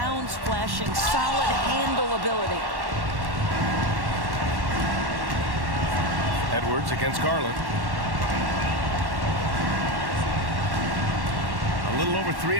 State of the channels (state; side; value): late; left; 1.1 ms